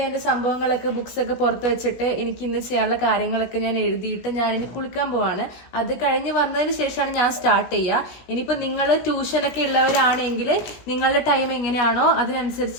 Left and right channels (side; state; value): right; late; 17 ms